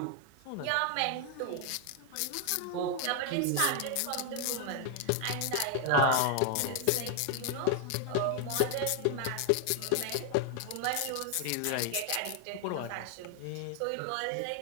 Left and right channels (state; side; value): different; both; correlation 0.00